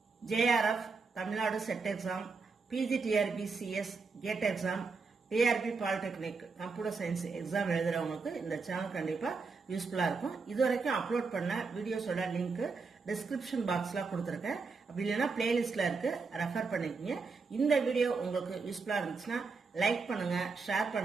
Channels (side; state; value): left; quieter; 4.5 dB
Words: JRF, Tamil Nadu Set Exam, PGTRB CS, GATE Exam, TRB Polytechnic, Computer Science Exam எழுதுறவங்களுக்கு இந்த channel கண்டிப்பா யூஸ்ஃபுல்லா இருக்கும். இதுவரைக்கும் upload பண்ண வீடியோஸோட link description பாக்ஸ்ல கொடுத்திருக்கேன். அப்படி இல்லைன்னா பிளேலிஸ்ட்ல இருக்கு, ரெஃபர் பண்ணிக்கங்க. இந்த வீடியோ உங்களுக்கு யூஸ்ஃபுல்லா இருந்துச்சுன்னா லைக் பண்ணுங்க, ஷேர்